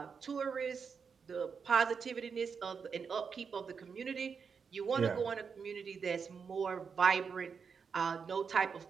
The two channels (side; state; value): left; quieter; 6.0 dB